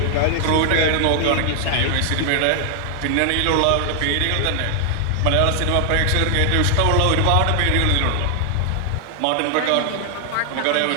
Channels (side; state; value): both; different; correlation 0.00